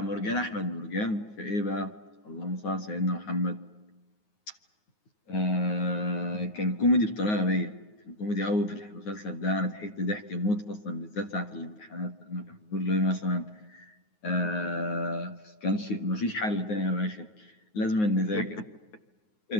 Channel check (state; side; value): late; right; 9.5 ms